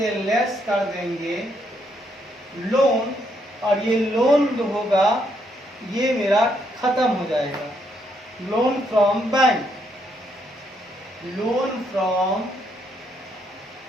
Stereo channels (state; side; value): normal; both; correlation 0.75